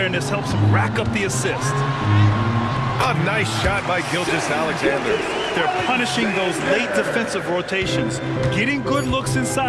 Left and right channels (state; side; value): identical; both; correlation 1.00